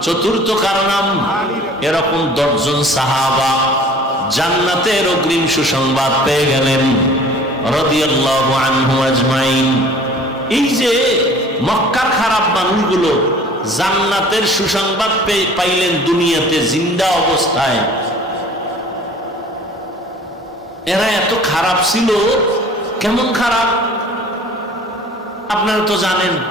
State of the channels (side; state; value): both; normal; correlation 0.48